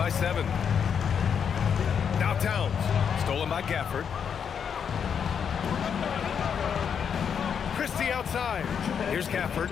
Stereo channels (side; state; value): right; quieter; 7.4 dB